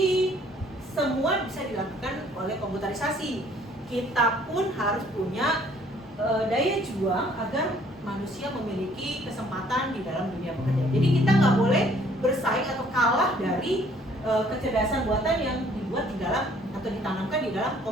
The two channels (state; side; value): normal; both; correlation 0.60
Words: semua bisa dilakukan oleh komputerisasi. Kita pun harus punya daya juang agar manusia memiliki kesempatan di dalam dunia pekerjaan. Jadi kita nggak boleh bersaing atau kalah dari kecerdasan buatan yang dibuat di dalam atau ditanamkan di dalam